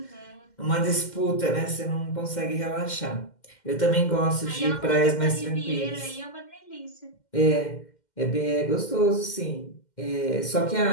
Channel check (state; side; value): late; right; 2.1 ms